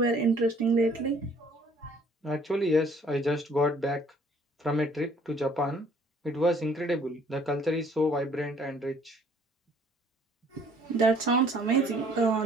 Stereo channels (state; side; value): normal; both; correlation 0.58